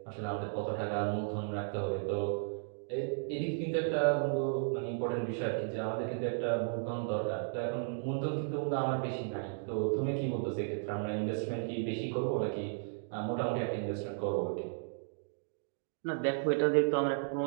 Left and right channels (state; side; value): silent; left; digital silence